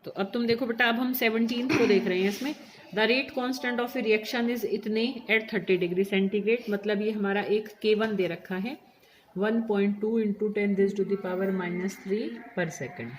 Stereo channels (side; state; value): both; identical; correlation 1.00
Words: तो अब तुम देखो बेटा, अब हम 17 को देख रहे हैं। इसमें the rate constant of A reaction is इतने एट 30 डिग्री सेंटीग्रेड, मतलब ये हमारा एक K1 दे रखा है 1.2 इंटू 10⁻³ पर सेकेंड।